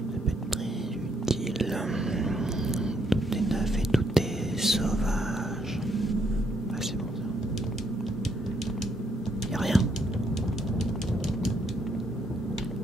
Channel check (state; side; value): normal; both; correlation 0.73